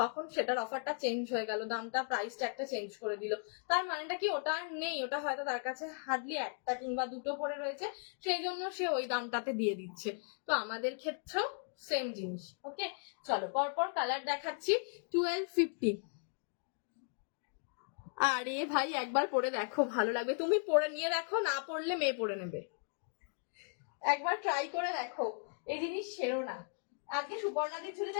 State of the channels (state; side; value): silent; right; 53 dB below the other